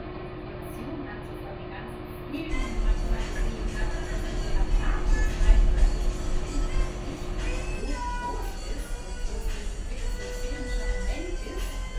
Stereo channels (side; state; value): both; identical; correlation 1.00